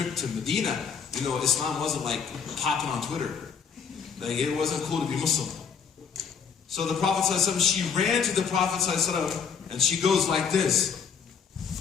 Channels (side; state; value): right; quieter; 6.7 dB